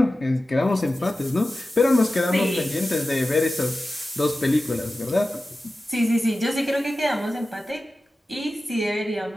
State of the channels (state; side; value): normal; both; correlation 0.94